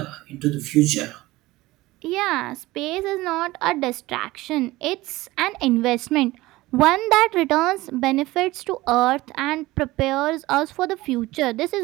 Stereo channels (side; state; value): left; quieter; 18.9 dB